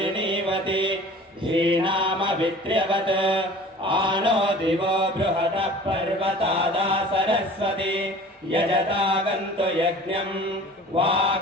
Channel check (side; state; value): both; normal; correlation 0.44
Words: धीनामवित्र्यवत् आनो दिवो बृहतः पर्वतादा सरस्वती यजतागन्तु यज्ञम्